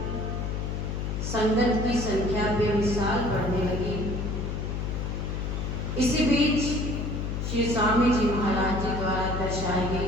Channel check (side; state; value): left; noise; hum, 2 dB below the sound